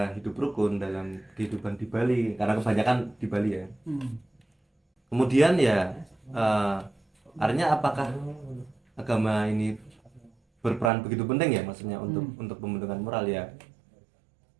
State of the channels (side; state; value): left; drops out; at 10.9 s